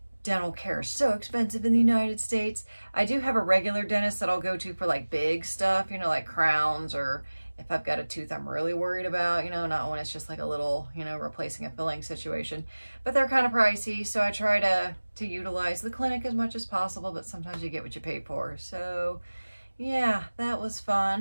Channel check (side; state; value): both; inverted; correlation -1.00